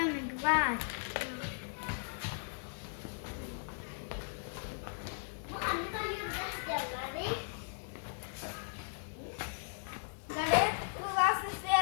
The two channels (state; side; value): silent; right; digital silence